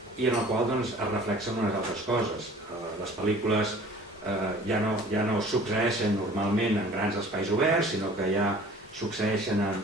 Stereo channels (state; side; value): normal; both; correlation 0.48